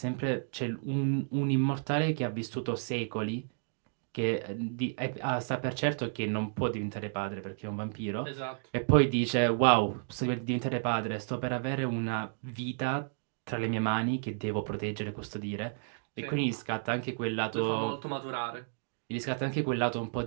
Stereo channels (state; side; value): silent; left; digital silence